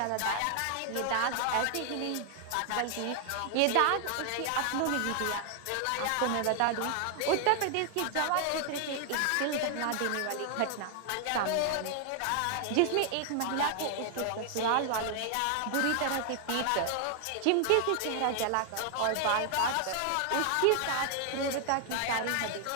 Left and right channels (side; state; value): both; different; correlation 0.00